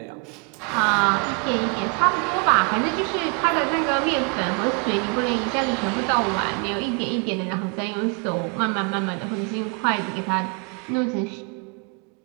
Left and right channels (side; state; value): left; quieter; 34.9 dB